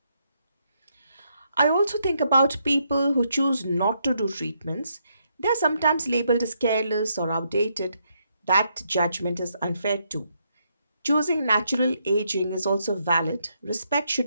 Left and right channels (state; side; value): inverted; both; correlation -0.77